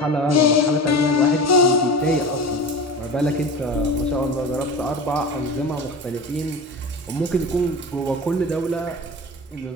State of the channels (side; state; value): both; normal; correlation 0.31